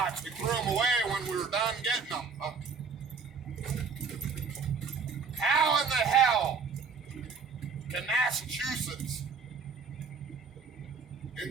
We threw them away when we were done getting them. How in the hell can Massachusetts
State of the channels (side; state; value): left; quieter; 5.2 dB